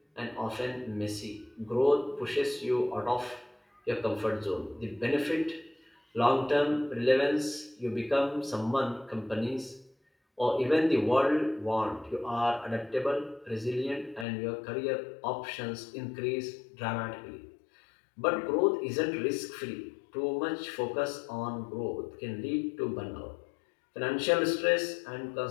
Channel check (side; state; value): right; drops out; at 14.2 s